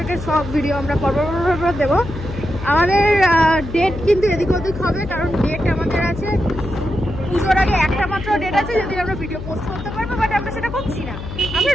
সব ভিডিও আমরা পরপর দেবো। আমাদের ডেট কিন্তু এদিক ওদিক হবে, কারণ ডেট আমাদের আছে পুজোর আগে একটা মাত্র ডেট আছে যদি আমরা ভিডিও পোস্ট করতে পারবো, বাট আমরা সেটা করছি না। আমরা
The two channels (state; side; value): noise; left; hum, 9 dB below the sound